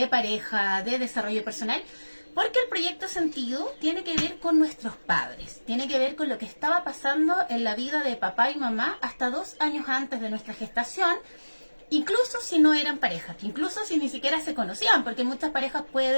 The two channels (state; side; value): inverted; both; correlation -1.00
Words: pareja, de desarrollo personal. Porque el proyecto Sentido tiene que ver con nuestros padres, tiene que ver con lo que estaba pasando en la vida de papá y mamá hasta 2 años antes de nuestra gestación, incluso si no eran pareja, incluso si ni siquiera se conocían, porque muchas parejas